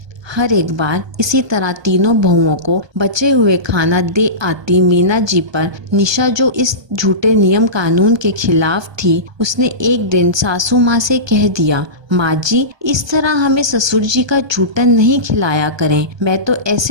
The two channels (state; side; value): late; left; 1.2 ms